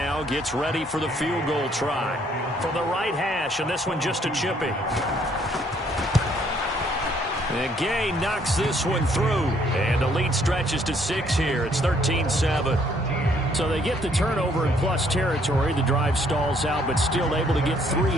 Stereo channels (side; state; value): both; normal; correlation 0.66